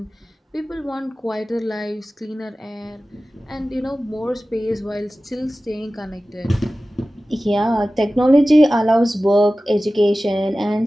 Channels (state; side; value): normal; both; correlation 0.96